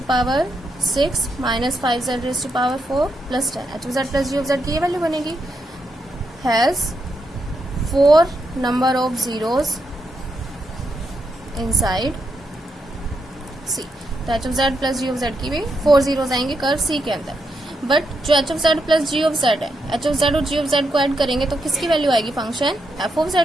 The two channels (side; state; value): both; normal; correlation 0.82